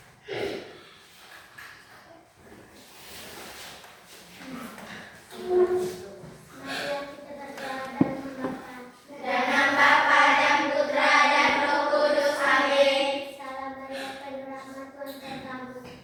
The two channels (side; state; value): both; identical; correlation 1.00